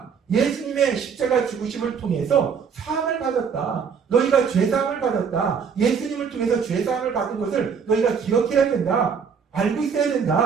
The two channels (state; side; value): quieter; left; 6.4 dB